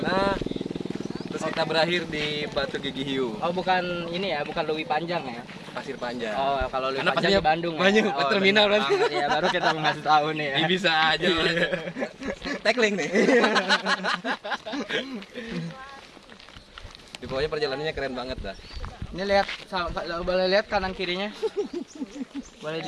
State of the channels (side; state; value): both; identical; correlation 1.00